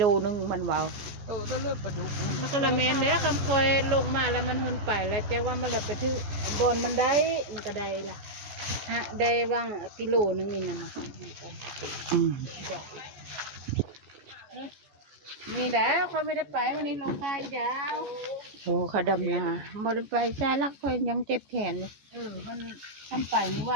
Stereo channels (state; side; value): late; left; 14 ms